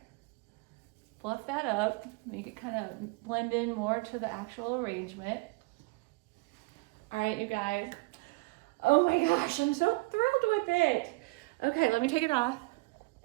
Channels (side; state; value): left; quieter; 24.9 dB